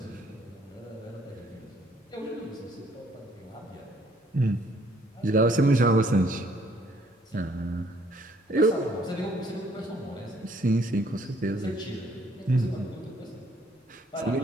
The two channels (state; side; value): normal; both; correlation 0.64